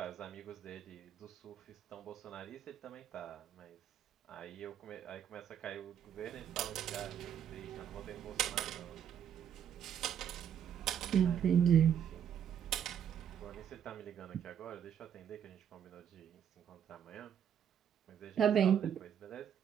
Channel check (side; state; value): left; quieter; 8.9 dB